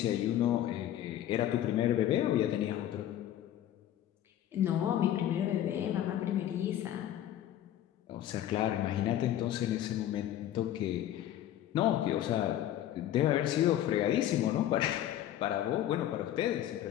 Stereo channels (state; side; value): quieter; right; 12.0 dB